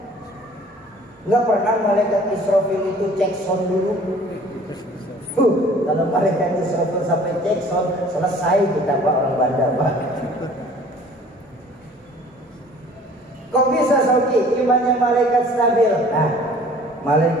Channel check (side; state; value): both; normal; correlation 0.51